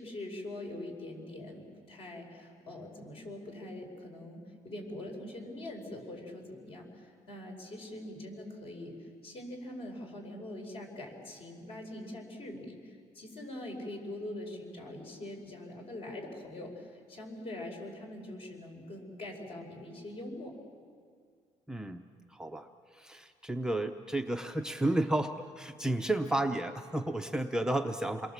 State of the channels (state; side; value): normal; both; correlation 0.84